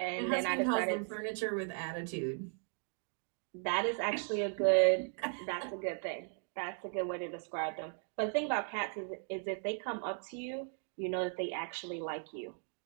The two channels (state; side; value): silent; left; 53 dB below the other